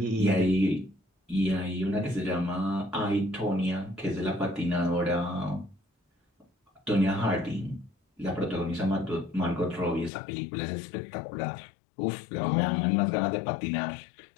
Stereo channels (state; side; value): drops out; right; at 10.1 s